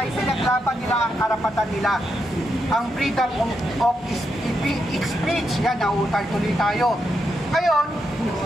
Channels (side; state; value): both; normal; correlation 0.83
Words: pinaglaban nila ang karapatan nila, ang freedom of speech. Yan, nautal tuloy tayo. Ngayon,